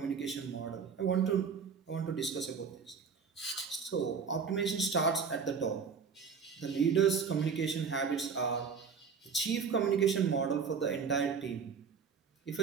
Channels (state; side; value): quieter; left; 5.9 dB